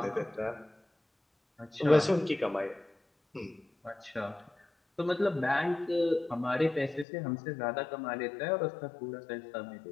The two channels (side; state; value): right; drops out; at 7.1 s